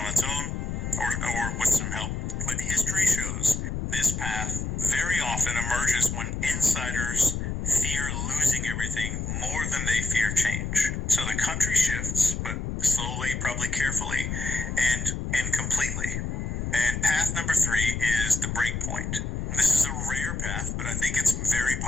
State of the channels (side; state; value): left; noise; rumble, 3 dB below the sound